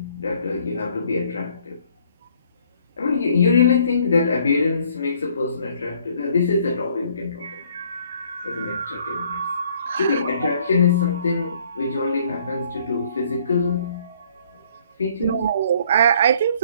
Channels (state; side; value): inverted; both; correlation -0.61